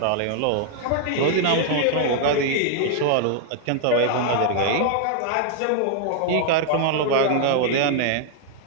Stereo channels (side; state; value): both; different; correlation 0.00